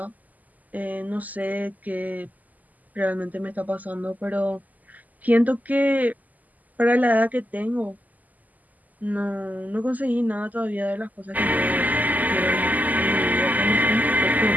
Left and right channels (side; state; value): left; late; 0.080 ms